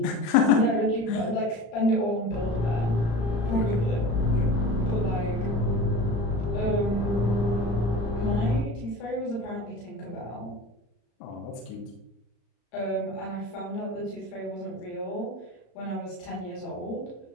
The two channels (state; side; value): late; right; 35 ms